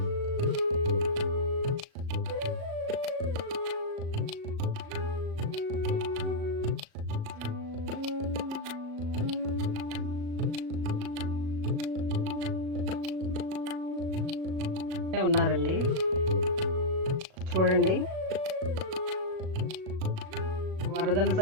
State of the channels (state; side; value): late; left; 37 ms